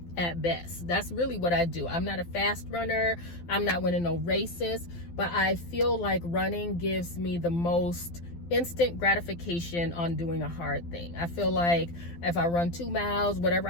at best. That's really what I do. I'm not a fast runner, I'm not winning no races, but I feel like running gives me the most instant gratification on doing a hard thing. I feel like if I run 2 miles, whatever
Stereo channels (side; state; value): right; late; 12 ms